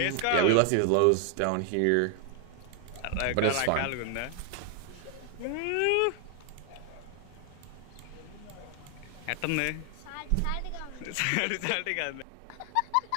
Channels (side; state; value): both; different; correlation 0.00